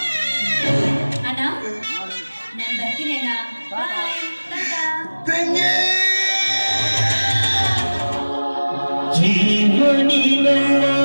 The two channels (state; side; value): inverted; both; correlation -1.00